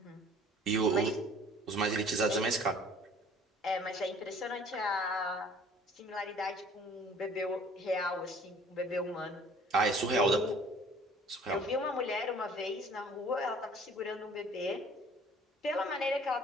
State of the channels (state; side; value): normal; both; correlation 0.52